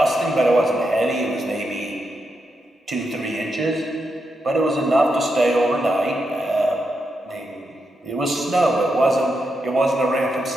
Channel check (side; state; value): both; normal; correlation 0.84